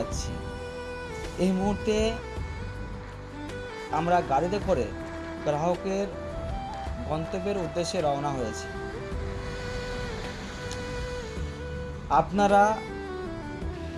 এই মুহূর্তে আমরা গাড়িতে করে গ্রাহকের গন্তব্যের উদ্দেশ্যে রওনা হয়েছি। আপনারা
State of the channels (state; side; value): identical; both; correlation 1.00